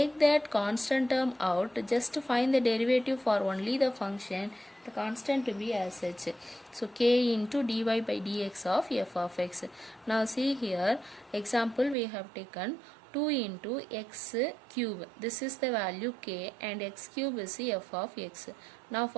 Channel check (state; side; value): drops out; left; at 12.0 s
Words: that constant term out, just to find the derivative for only the function, the constant to be as such. So k into dy by dx of f of x. Now see here, example we have taken 2 into x cube. This is the value k, and x cube is the f of x. Now